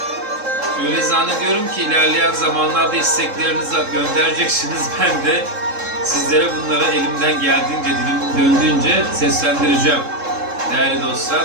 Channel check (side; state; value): left; late; 3.7 ms